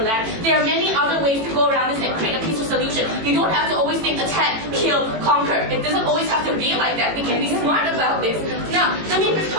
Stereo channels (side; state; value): left; late; 18 ms